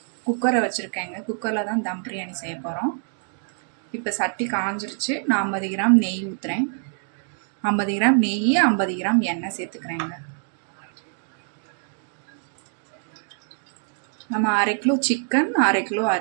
குக்கரை வச்சுருக்கேங்க. குக்கரில் தான் தம் பிரியாணி செய்ய போகிறோம். இப்போ சட்டி காஞ்சிருச்சு. நான் 50 கிராம் நெய் ஊற்றுறேன். 50 கிராம் நெய், 50 கிராம் எண்ணெய் சேர்த்துக்கிறேங்க. நம்ம 1/2 கிலோ சிக்கன், 1/2 கிலோ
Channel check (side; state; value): left; silent; digital silence